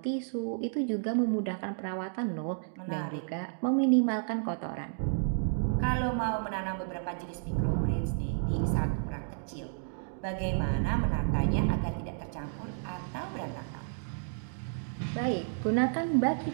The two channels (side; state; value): left; silent; digital silence